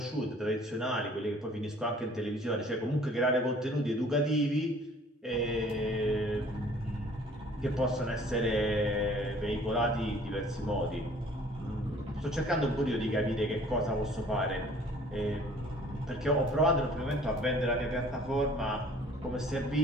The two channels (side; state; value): both; normal; correlation 0.54